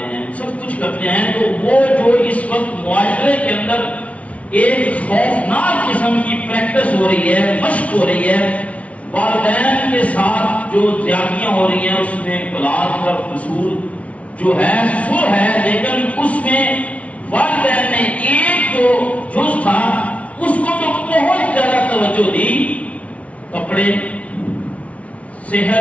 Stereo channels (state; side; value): late; right; 0.065 ms